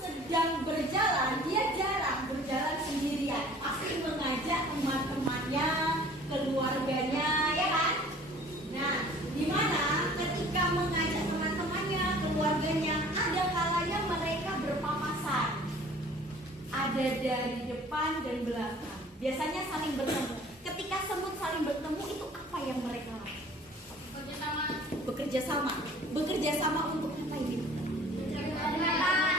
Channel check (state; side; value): normal; both; correlation 0.50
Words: ada dari depan dan belakang. Biasanya saling bertemu. Ketika semut saling bertemu itu apa yang mereka lakukan? Bekerja sama. Bekerja sama untuk apa ini?